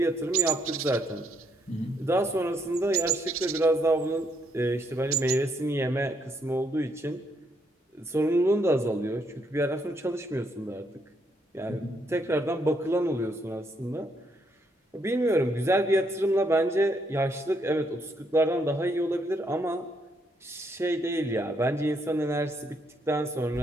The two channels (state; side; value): normal; both; correlation 0.74